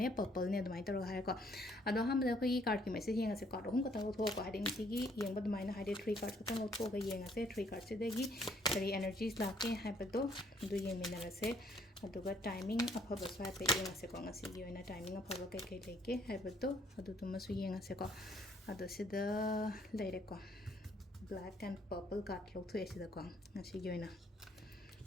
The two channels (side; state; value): both; normal; correlation 0.65